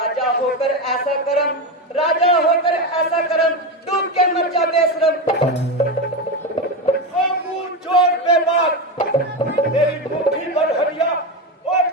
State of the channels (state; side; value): normal; both; correlation 0.16